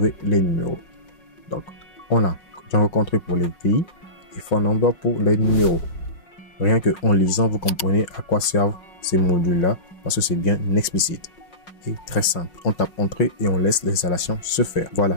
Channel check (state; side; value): late; right; 5.5 ms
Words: les numéros. Donc, on a Django country pour les pays et phone number pour les numéros. Rien que en lisant, vous comprenez à quoi servent ces modules-là parce que c'est bien explicite et très simple. On tape entrée et on laisse l'installation se faire.